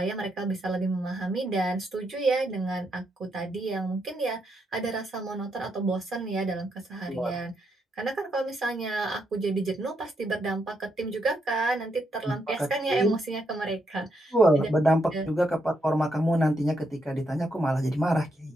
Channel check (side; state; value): both; normal; correlation 0.79